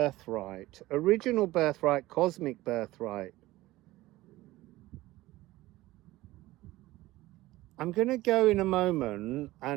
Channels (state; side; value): quieter; left; 17.7 dB